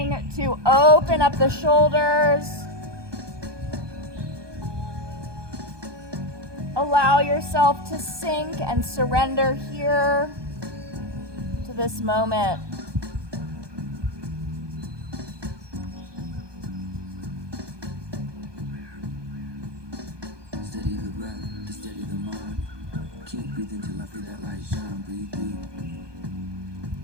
to open up the shoulders. Allow yourself to sink and surrender here to this moment. Steady the breath, to steady the mind. Keep breathing till I feel that light shine. Breathe deep.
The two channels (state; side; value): late; left; 1.2 ms